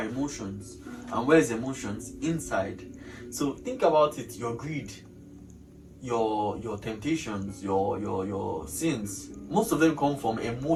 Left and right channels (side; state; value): both; identical; correlation 1.00